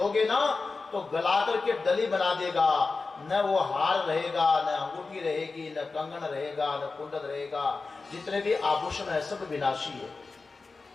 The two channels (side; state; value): right; quieter; 4.0 dB